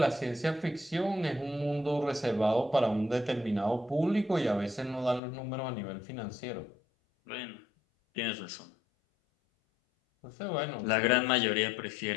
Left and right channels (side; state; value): right; drops out; at 5.2 s